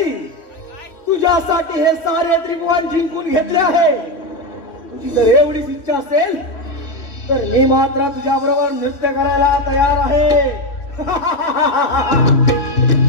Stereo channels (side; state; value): right; late; 3.1 ms